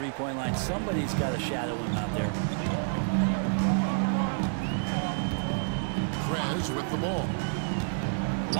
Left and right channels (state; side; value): silent; left; 59 dB below the other